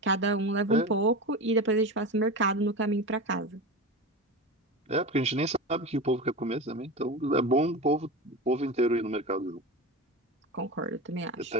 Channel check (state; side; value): normal; both; correlation 0.26